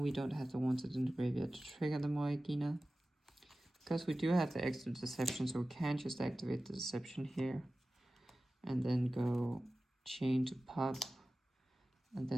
don't have the wanted in the graveyard to trigger the Moegina, because we do have the extra deception, so we can just activate the deception here, and then go chain to pop, and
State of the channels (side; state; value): both; normal; correlation 0.96